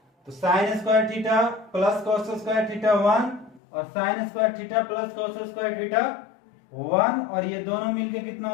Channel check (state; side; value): drops out; right; at 3.6 s